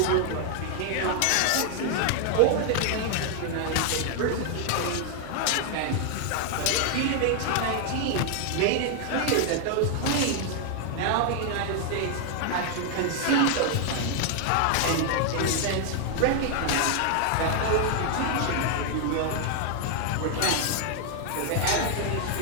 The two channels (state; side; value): different; both; correlation 0.00